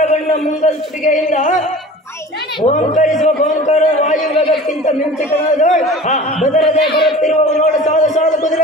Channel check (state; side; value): normal; both; correlation 0.40